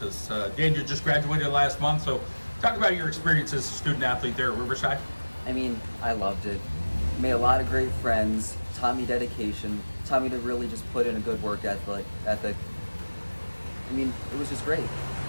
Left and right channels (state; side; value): inverted; both; correlation -1.00